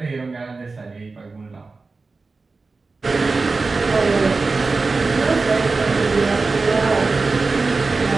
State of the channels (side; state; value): left; quieter; 4.0 dB